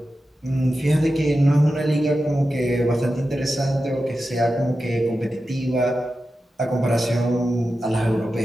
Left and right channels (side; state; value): both; normal; correlation 0.92